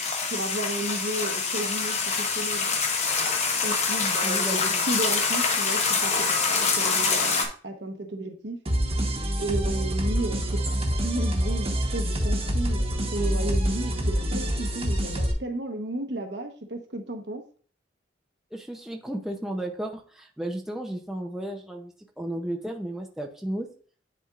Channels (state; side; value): normal; both; correlation 0.41